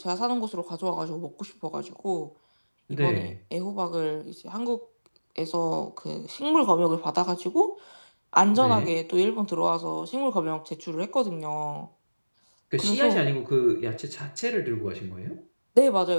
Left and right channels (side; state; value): both; inverted; correlation -1.00